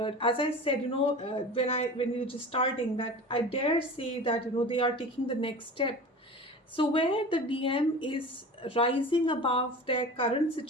As I said, when we were just starting, that I dare say that they are taking the next step. So where the DM is rising above their current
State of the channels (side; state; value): both; normal; correlation 0.35